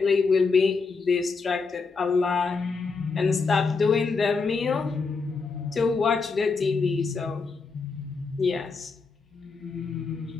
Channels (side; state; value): right; quieter; 4.6 dB